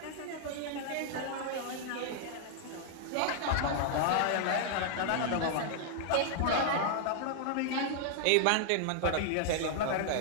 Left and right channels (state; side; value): different; both; correlation -0.01